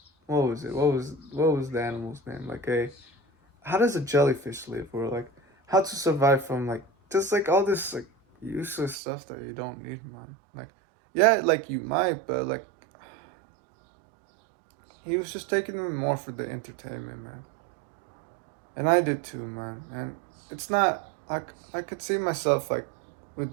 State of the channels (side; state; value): left; drops out; at 9.0 s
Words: what was it what was the animal's name, like a how does a jellyfish live, or like how to survive from like just like all this like useless stuff that you don't need, man. Like yeah, like you might, but like he was just taking them more for the entertainment, man. And I did too, man. And it's not I could see myself like